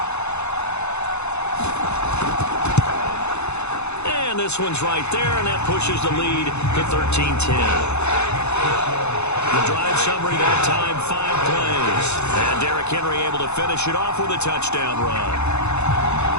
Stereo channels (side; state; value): right; late; 0.81 ms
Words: And this one's right there, and that pushes the lead to 13-10. The drive summary that time, 5 plays. And Derrick Henry able to finish it off with a touchdown run.